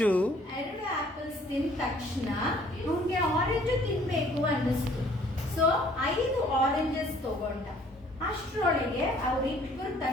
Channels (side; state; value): both; normal; correlation 0.58